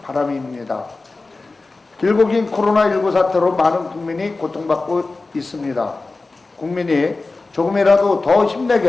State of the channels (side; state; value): right; quieter; 3.5 dB